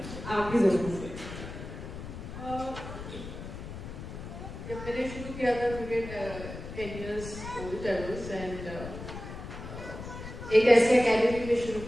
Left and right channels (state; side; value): noise; left; rumble, 10 dB below the sound